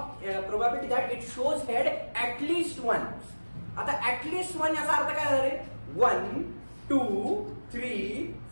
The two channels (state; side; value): inverted; both; correlation -1.00